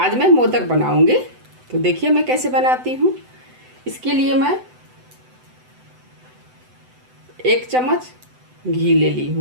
मैं मोदक बनाऊँगी। तो देखिए मैं कैसे बनाती हूँ। इसके लिए मैं 1 चम्मच घी ले ली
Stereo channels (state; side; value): late; left; 7.9 ms